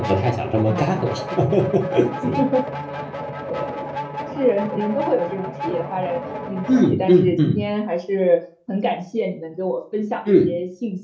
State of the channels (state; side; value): identical; both; correlation 1.00